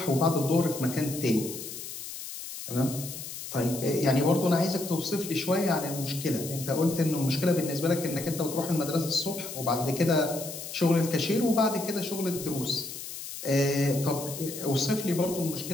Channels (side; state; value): left; noise; hiss, 9 dB below the sound